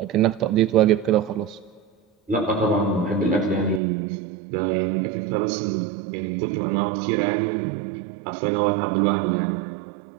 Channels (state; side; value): drops out; left; at 3.8 s